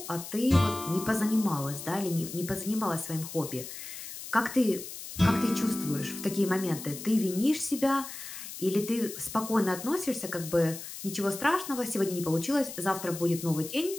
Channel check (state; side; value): noise; left; hiss, 10 dB below the sound